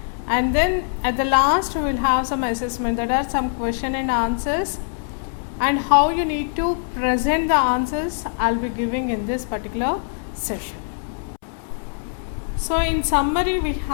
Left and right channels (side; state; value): right; silent; 64 dB below the other